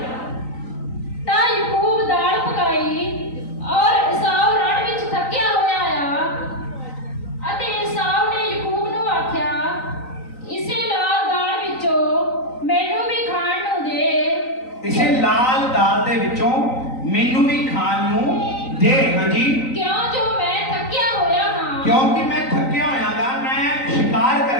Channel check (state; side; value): late; right; 3.9 ms